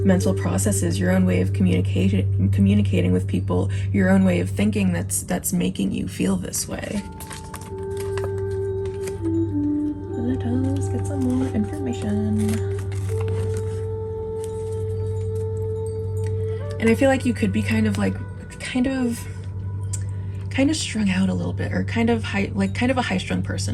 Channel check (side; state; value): both; identical; correlation 1.00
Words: mental processes, your own way of communicating with people, your own way of thinking that's making you feel this way. Let us get some more information. And I feel like you could be kind of strung out a little bit, or kind of a high-strung